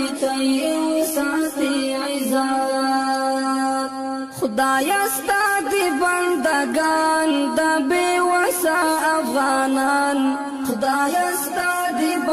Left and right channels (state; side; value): identical; both; correlation 1.00